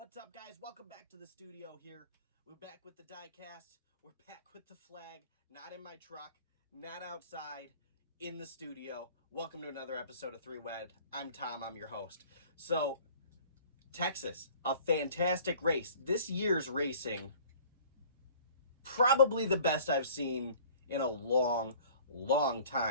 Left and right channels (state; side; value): inverted; both; correlation -0.49